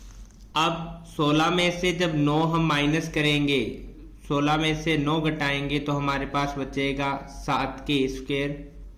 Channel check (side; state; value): both; identical; correlation 1.00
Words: अब 16 में से जब 9 हम माइनस करेंगे, 16 में से 9 घटाएंगे तो हमारे पास बचेगा 7K स्क्वायर